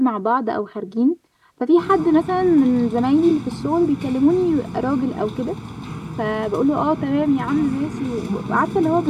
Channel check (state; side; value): identical; both; correlation 1.00